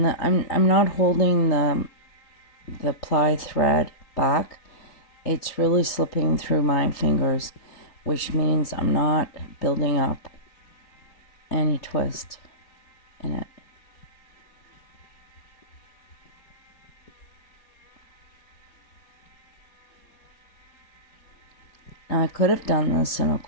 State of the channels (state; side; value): late; right; 3.8 ms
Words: I'm not holding the ply thread back. It's really slipping through my fingers, which means I'm not building up any twist in it. Now, I could have done this in a